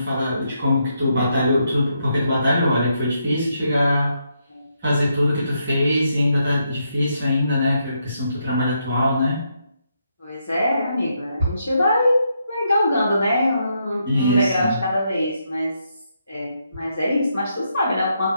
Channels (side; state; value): both; inverted; correlation -0.79